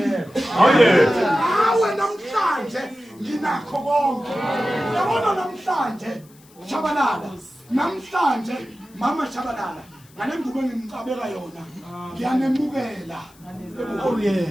ngawe namhlanje nginakho konke. Yabona namhlanje Shabalala namhlanje mama Shabalala ngale ngubo engimcabeka yona ngiyanemukela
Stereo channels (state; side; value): noise; left; hiss, 27 dB below the sound